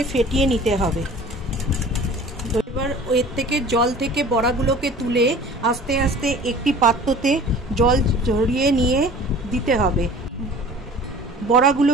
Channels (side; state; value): both; normal; correlation 0.45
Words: ফেটিয়ে নিতে হবে। এবার এর থেকে জল থেকে বড়াগুলোকে তুলে আস্তে আস্তে একটি পাত্রতে জল ঝরিয়ে নিয়ে দিতে হবে।